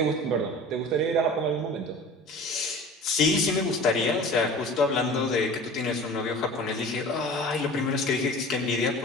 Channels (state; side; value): normal; both; correlation 0.40